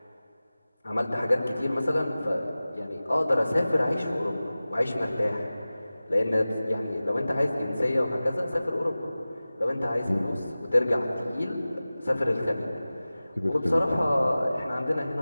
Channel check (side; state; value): both; inverted; correlation -0.97